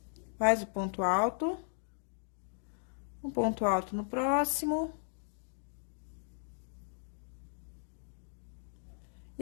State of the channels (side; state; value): right; silent; digital silence